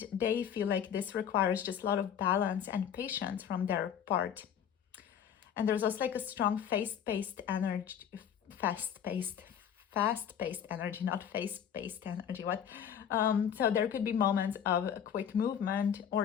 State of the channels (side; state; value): right; quieter; 8.7 dB